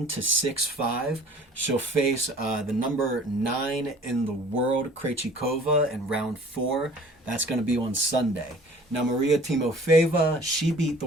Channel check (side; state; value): both; normal; correlation 0.49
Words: to 6-5. She'll face the number 9 in the world, Krejcikova, in round 4. That's going to be on Sunday. Now, Maria Timofeeva, she beat the